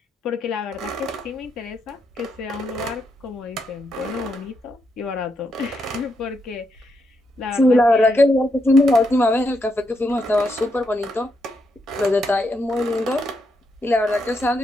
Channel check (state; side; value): normal; both; correlation 0.80